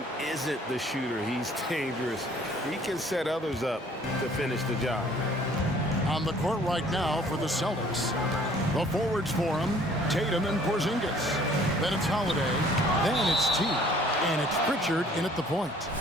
isn't the shooter, he's dangerous. He can set others up to finish the job. On the court right now for the Celtics. The forwards for him, Tatum and Porzingis. Then it's Holiday. Then it's T. And it's Pritchard in at the point.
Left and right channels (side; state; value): both; normal; correlation 0.56